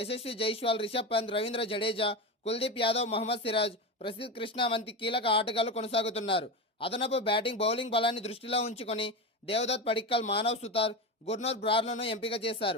జైస్వాల్, రిషబ్ పంత్, రవీంద్ర జడేజా, కుల్దీప్ యాదవ్, మహమ్మద్ సిరాజ్, ప్రసిద్ధ్ కృష్ణ వంటి కీలక ఆటగాళ్లు కొనసాగుతున్నారు. అదనపు బ్యాటింగ్, బౌలింగ్ బలాన్ని దృష్టిలో ఉంచుకొని దేవదత్ పడిక్కల్, మానవ్ సుతార్, గుర్నూర్ బ్రార్లను ఎంపిక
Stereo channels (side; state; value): both; normal; correlation 0.19